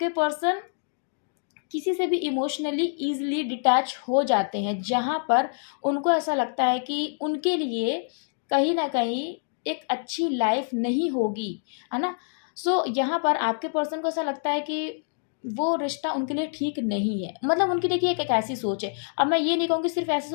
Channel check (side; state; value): right; silent; digital silence